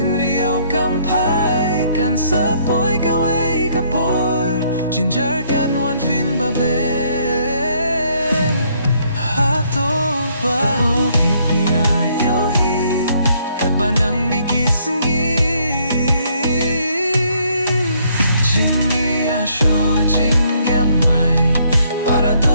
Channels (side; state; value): both; inverted; correlation -0.67